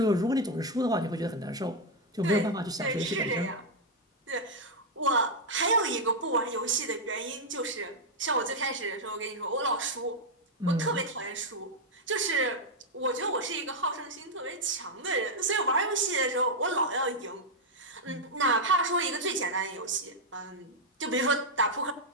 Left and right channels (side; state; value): both; normal; correlation -0.01